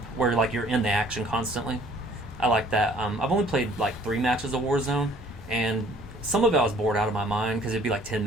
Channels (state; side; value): normal; both; correlation 0.56